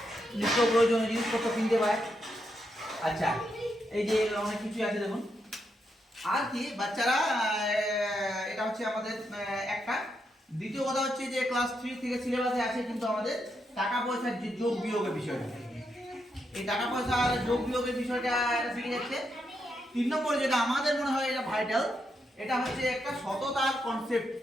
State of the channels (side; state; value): both; normal; correlation 0.81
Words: নিত্য প্রয়োজনীয় জিনিসপত্র কিনতে পায়। আচ্ছা, এই যে অনেক কিছু আছে দেখুন। আর কি বাচ্চারা এটা হচ্ছে আমাদের একটা। দ্বিতীয় কথা হচ্ছে যে ক্লাস 3 থেকে সিলেবাসে আছে কিন্তু আমাদের টাকা পয়সার যে যোগ বিয়োগের বিষয়টা, এই টাকা পয়সার যোগ বিয়োগের বিষয়টা এটা শিখে যাচ্ছে। 3 নম্বর যেটা আমাদের মনে হয় এটা ভাইটাল, এটা হচ্ছে একটা সততার কনসেপ্ট